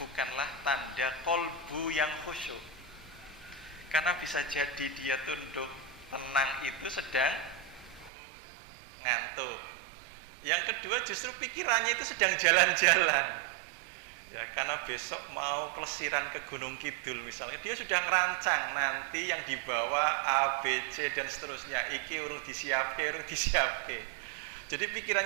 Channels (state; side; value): drops out; left; at 8.1 s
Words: tanda kolbu yang khusyuk. Karena bisa jadi dia tunduk tenang itu sedang ngantuk. Yang kedua justru pikirannya itu sedang jalan-jalan. Ya, karena besok mau pelesiran ke Gunung Kidul misalnya, dia sudah ngerancang nanti yang dibawa A, B, C dan seterusnya. Iki urung disiapke. Jadi